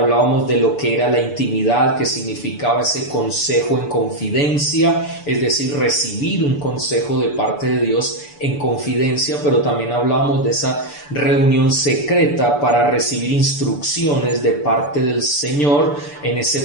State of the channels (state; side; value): late; right; 6.9 ms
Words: de lo que era la intimidad, que significaba ese consejo en confidencia, es decir, recibir un consejo de parte de Dios en confidencia, pero también hablábamos de esa reunión secreta para recibir instrucciones de parte del Señor en ese